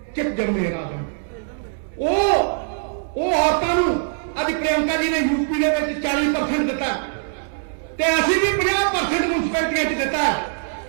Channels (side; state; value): left; silent; 64 dB below the other